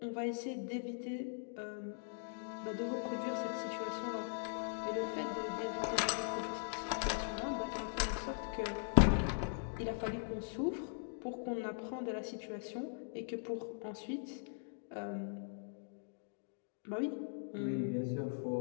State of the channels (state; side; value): silent; right; digital silence